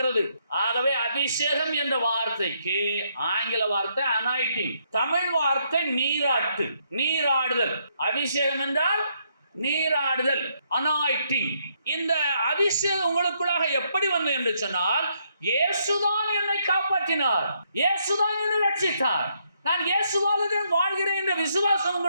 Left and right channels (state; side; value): inverted; both; correlation -0.74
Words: ஆகவே அபிஷேகம் என்ற வார்த்தைக்கு ஆங்கில வார்த்தை அனாயிட்டிங், தமிழ் வார்த்தை நீராட்டு, நீராடுதல். அபிஷேகம் என்றால் நீராடுதல், அனாயிட்டிங். இந்த அபிஷேகம் உங்களுக்குள்ளாக எப்படி வந்தது என்று சொன்னால், இயேசுதான் என்னை காப்பாற்றினார், இயேசுதான் என்னை ரட்சித்தார், நான் இயேசுவாலே வாழ்கிறேன் என்ற விசுவாசம்